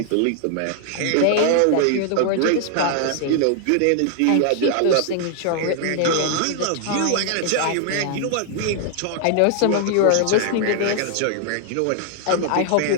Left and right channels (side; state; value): both; different; correlation 0.00